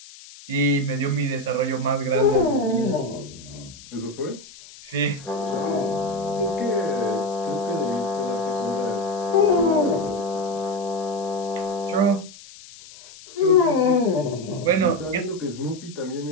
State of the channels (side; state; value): left; noise; hiss, 19 dB below the sound